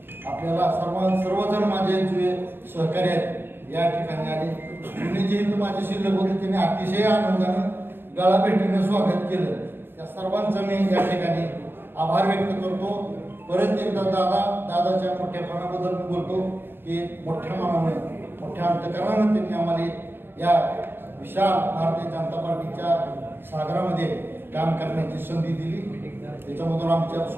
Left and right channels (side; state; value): left; late; 0.10 ms